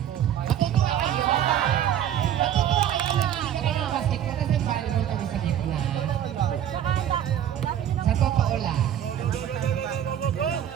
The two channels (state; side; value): quieter; left; 10.3 dB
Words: Matutuwa kayo. Matutuwa kayo na hindi kayo ng basketball kasi volleyball kami sa gitna. Sa totoo lang.